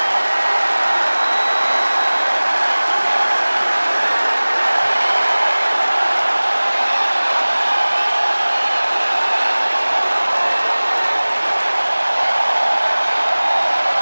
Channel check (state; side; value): inverted; both; correlation -1.00